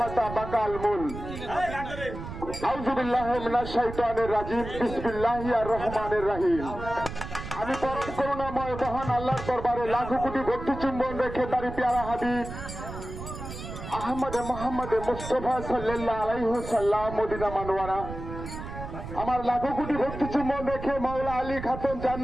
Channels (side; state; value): right; noise; rumble, 9 dB below the sound